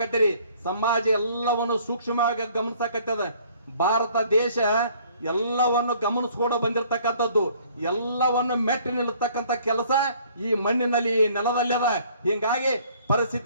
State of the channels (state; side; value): inverted; both; correlation -0.58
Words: ಸಮಾಜ ಎಲ್ಲವನ್ನು ಸೂಕ್ಷ್ಮವಾಗಿ ಗಮನಿಸಕತ್ತದ. ಭಾರತ ದೇಶ ಎಲ್ಲವನ್ನು ಗಮನಿಸ್ಕೊಂಡು ಬಂದಿರತಕ್ಕಂಥದ್ದು, ಎಲ್ಲವನ್ನು ಮೆಟ್ಟಿ ನಿಲ್ಲತಕ್ಕಂಥ ಕೆಲಸ ಈ ಮಣ್ಣಿನಲ್ಲಿ ಈ ನೆಲದಲ್ಲಿ ಅದ. ಹಿಂಗಾಗಿ